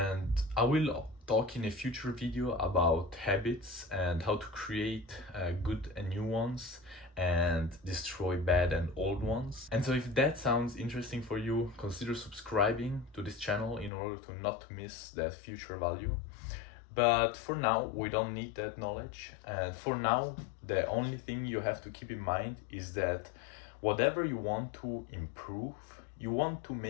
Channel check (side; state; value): right; drops out; at 13.9 s